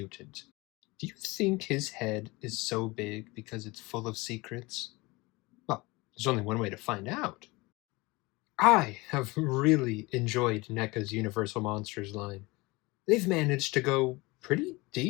Do you think his head is so big because it's full of secrets? Well, there's only one way to find out. I have really enjoyed NECA's Universal Monsters line. They've managed to go pretty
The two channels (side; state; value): right; quieter; 23.6 dB